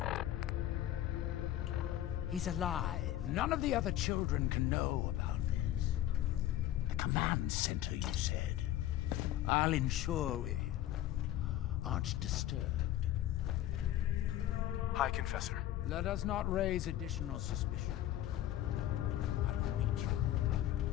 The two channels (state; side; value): quieter; right; 13.1 dB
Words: He's alive. None of the other children can know about this. The command center, you said. I'll ensure we aren't disturbed. High Confessor. Let us not raise additional suspicion. I will meet you.